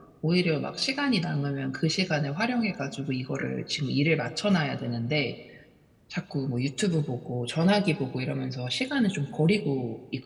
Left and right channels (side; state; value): both; identical; correlation 1.00